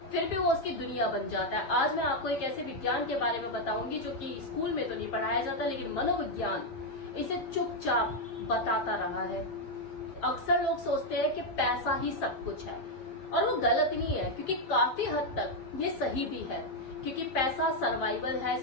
फिर भी वो उसकी दुनिया बन जाता है। आज मैं आपको एक ऐसे विज्ञान के बारे में बताऊंगी जो कि स्कूल में तो नहीं पढ़ाया जाता, लेकिन मनोविज्ञान इसे चुपचाप बताता रहा है। अक्सर लोग सोचते हैं कि पैसा ही सब कुछ है, और वो गलत नहीं है, क्योंकि काफी हद तक ये सही भी है, क्योंकि पैसा सर्वाइवल है,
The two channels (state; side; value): late; right; 7.5 ms